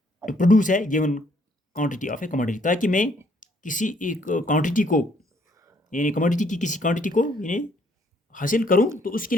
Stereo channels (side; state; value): both; normal; correlation 0.66